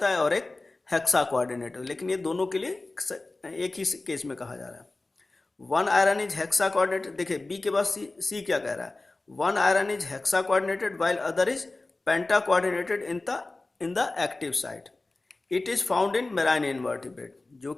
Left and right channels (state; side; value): quieter; right; 3.2 dB